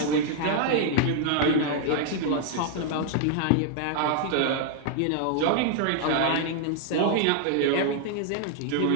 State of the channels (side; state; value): both; different; correlation 0.00